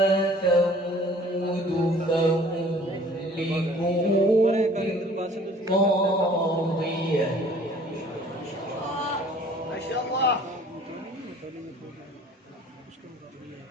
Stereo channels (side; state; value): both; normal; correlation 0.52